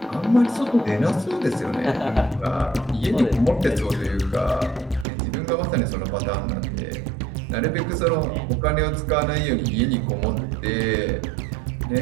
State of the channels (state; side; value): drops out; left; at 5.1 s